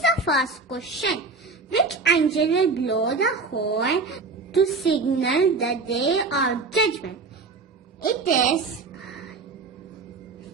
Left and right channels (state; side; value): quieter; left; 4.2 dB